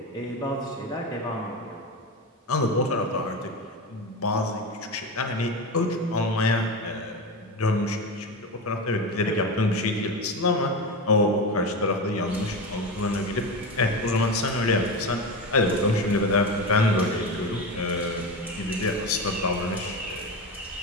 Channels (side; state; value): both; normal; correlation 0.21